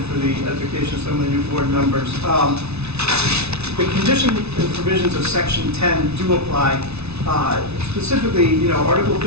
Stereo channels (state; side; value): late; left; 0.80 ms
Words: for the edification of some of the new board members. The conditions and provisions of Section 10 do apply. Specifically, you know, Article